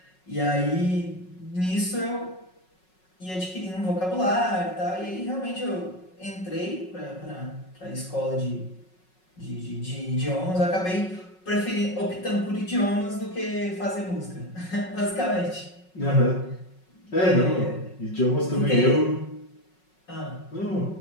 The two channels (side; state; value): right; late; 5.4 ms